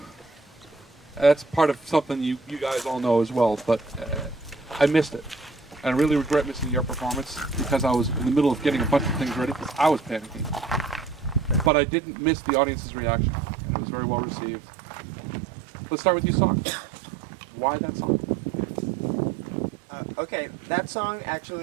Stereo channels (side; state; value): left; drops out; at 11.7 s